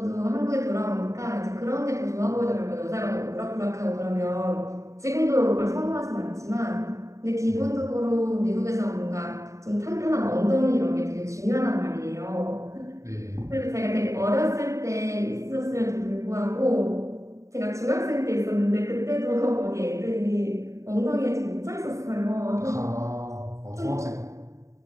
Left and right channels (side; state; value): left; late; 0.15 ms